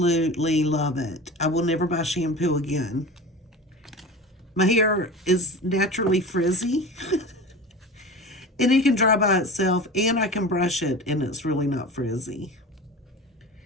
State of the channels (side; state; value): both; normal; correlation 0.33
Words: love it. I will never buy shampoo again. My hair is naturally frizzy. And it can dry by itself. And I can brush it. And it's really not frizzy.